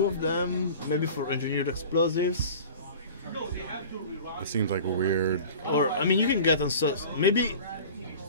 of them, maybe for engineered explosives. It seems like a weird. Or I mean, you can get maybe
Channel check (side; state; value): both; inverted; correlation -0.40